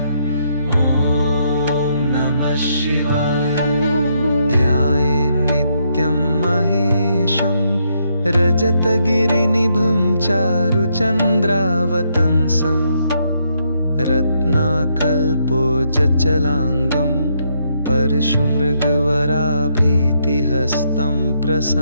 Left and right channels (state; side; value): inverted; both; correlation -0.76